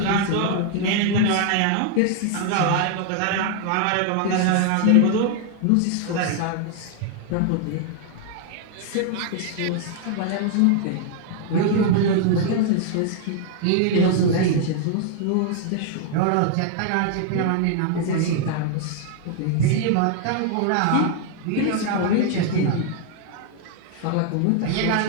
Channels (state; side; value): different; both; correlation 0.00